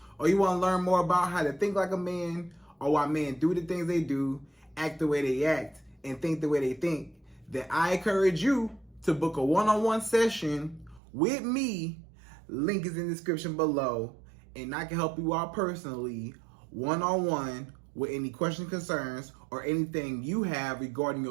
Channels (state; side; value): drops out; left; at 11.0 s